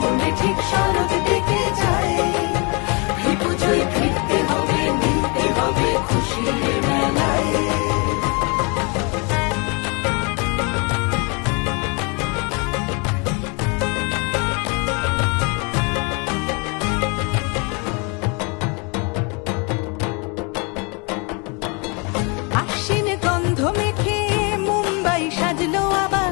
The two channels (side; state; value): right; quieter; 32.1 dB